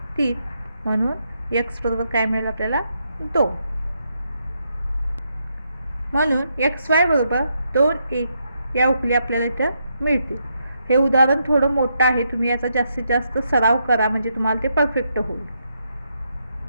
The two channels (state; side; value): inverted; both; correlation -0.80